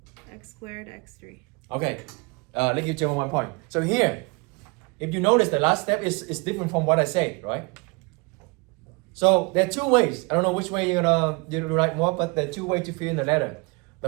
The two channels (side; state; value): left; quieter; 29.0 dB